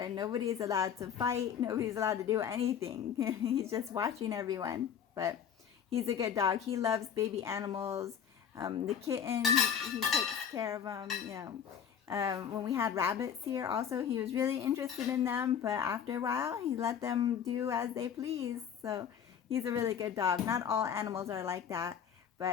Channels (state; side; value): quieter; right; 8.1 dB